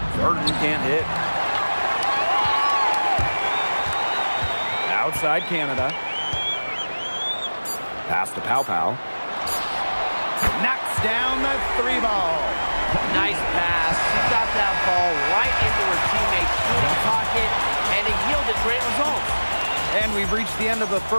Burton can't hit. Outside Canada. Pass to Pow Pow. Knocks down the 3 ball. Nice pass. She got that ball right into her teammate's shooting pocket, and it yielded great results. And we've reached the end of the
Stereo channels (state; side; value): inverted; both; correlation -1.00